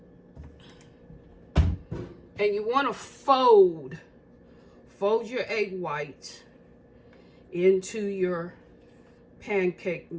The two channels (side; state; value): both; identical; correlation 1.00